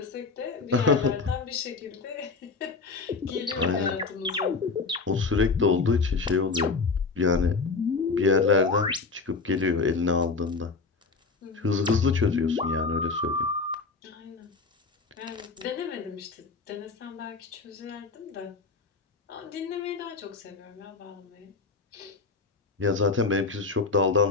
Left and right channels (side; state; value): right; quieter; 4.2 dB